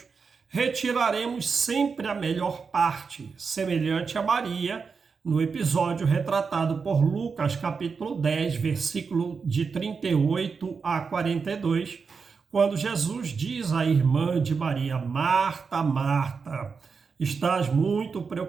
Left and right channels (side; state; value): left; quieter; 5.3 dB